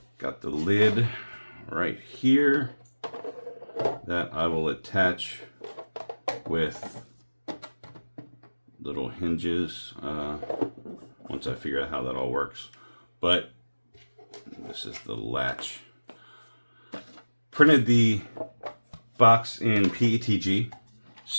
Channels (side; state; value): both; inverted; correlation -1.00